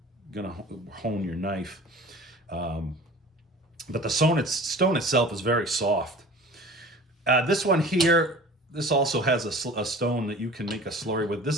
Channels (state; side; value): normal; both; correlation 0.42